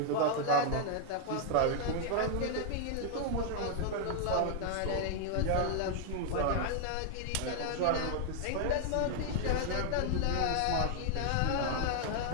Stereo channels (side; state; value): both; different; correlation 0.00